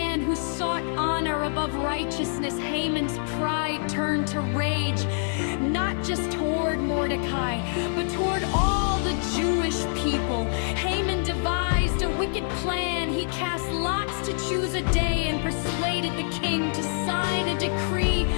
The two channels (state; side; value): silent; right; 56 dB below the other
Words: who sought honor above righteousness. Haman's pride turned to rage, not just toward Mordecai, but toward all the Jewish people. Haman devised a wicked plan. He cast lots to choose a day and persuaded the king to sign a decree